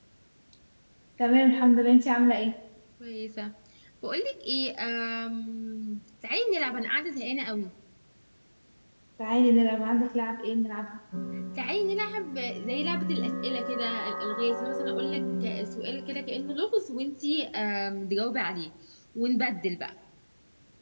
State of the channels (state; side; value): inverted; both; correlation -1.00